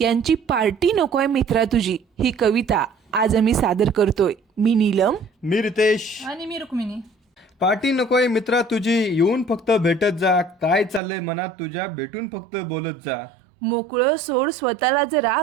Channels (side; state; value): left; drops out; at 11.0 s